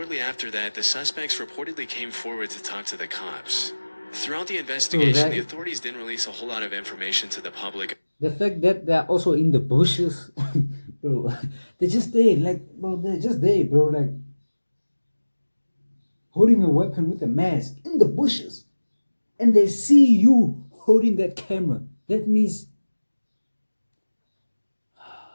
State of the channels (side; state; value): both; inverted; correlation -1.00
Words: after that, the suspects reportedly came forward to talk to the cops. Throughout the investigation, the authorities didn't release a whole lot of information to the public. The fact that they're also in the bushes, bro, they're just there, like, bro, they're just there, bro, like, holding a weapon with a mask in the bushes, and they see you holding that camera. That means,